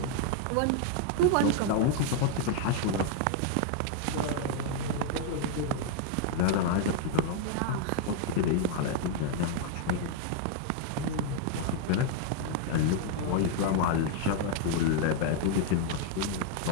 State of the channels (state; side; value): different; both; correlation 0.00